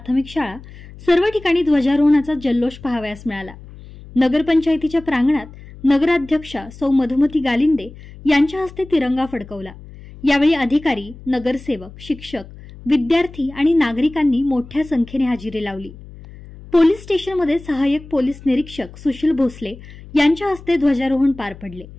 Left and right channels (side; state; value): left; noise; hum, 18 dB below the sound